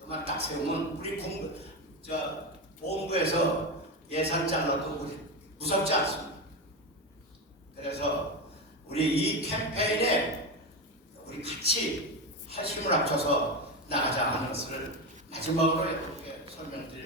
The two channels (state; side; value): normal; both; correlation 0.16